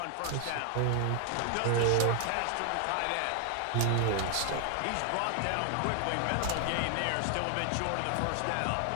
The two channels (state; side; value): different; both; correlation 0.00